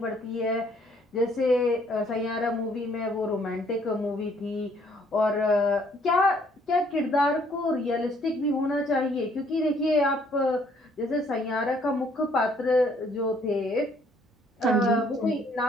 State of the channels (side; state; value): both; normal; correlation 0.64